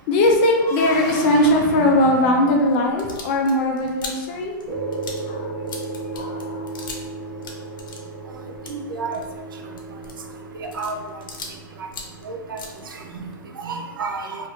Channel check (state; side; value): normal; both; correlation -0.13